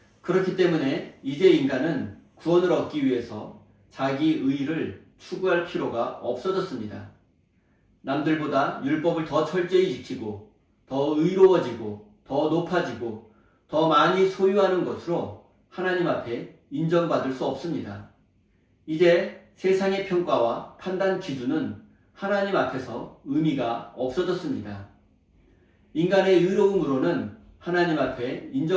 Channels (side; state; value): both; identical; correlation 1.00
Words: 그렇기 때문에 이제 인간은 구원을 얻기 위해서 자기 의를 추구할 필요가 없어졌습니다. 남들보다 율법을 더 철저히 지키고 더 의로워지고 더 높아지고 더 많이 소유하는 것으로 하나님 앞에 인정받을 수 없습니다. 이제 세상의 평가와 판단 기준은 하나님 앞에서 의미가 없어졌습니다. 인간의 의로움으로는 하나님 앞에